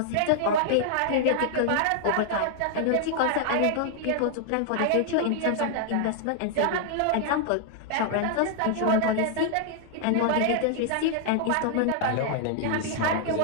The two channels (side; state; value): both; different; correlation -0.01